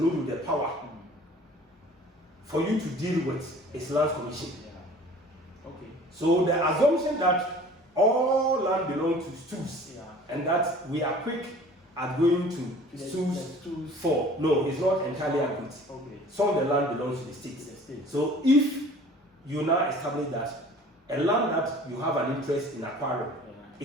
with the power for you to deal with is Lands Commission. So the assumption that all land belongs to stools and that we are quick at going to stools for, no, it's not entirely accurate. Some of the land belongs to the state. So if you now establish that a land that you have an interest in acquiring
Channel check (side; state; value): both; normal; correlation 0.47